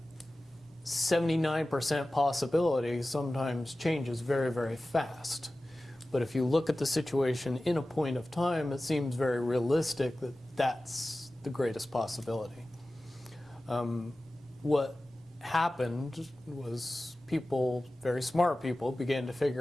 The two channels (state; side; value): normal; both; correlation 0.96